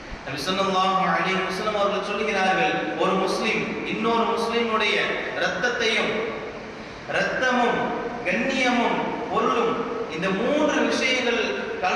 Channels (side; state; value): both; identical; correlation 1.00